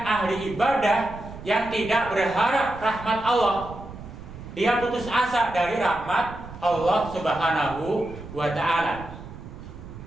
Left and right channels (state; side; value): noise; right; rumble, 14 dB below the sound